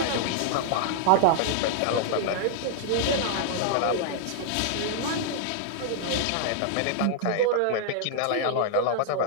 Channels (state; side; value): different; both; correlation -0.01